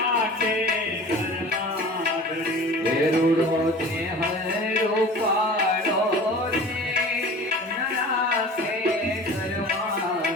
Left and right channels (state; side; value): normal; both; correlation 0.40